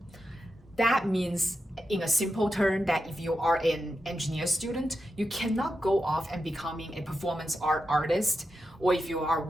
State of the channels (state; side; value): normal; both; correlation 0.88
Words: That means, in a simple term, that if you are an engineer student, you cannot go off and becoming a performance art artist, or if you are